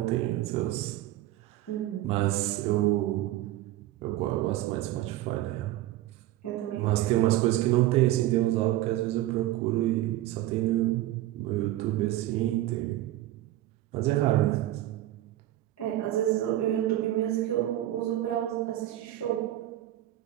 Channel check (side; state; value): left; quieter; 14.7 dB